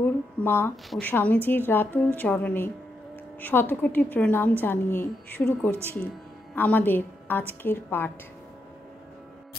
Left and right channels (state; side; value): normal; both; correlation 0.82